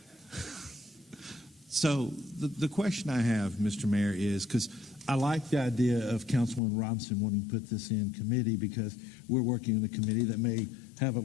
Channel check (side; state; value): right; drops out; at 6.6 s